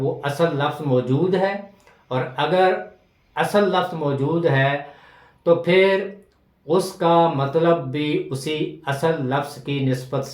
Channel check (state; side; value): identical; both; correlation 1.00